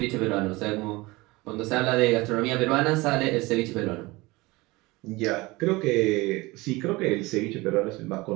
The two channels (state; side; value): quieter; left; 22.1 dB